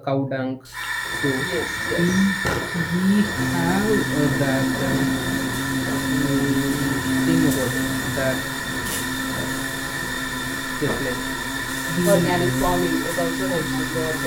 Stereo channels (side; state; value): both; identical; correlation 1.00